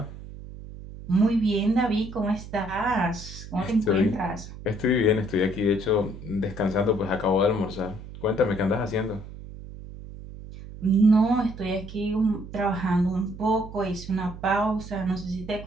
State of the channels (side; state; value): right; noise; hum, 13 dB below the sound